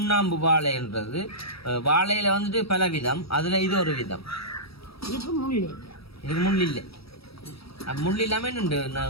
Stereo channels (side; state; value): right; late; 0.76 ms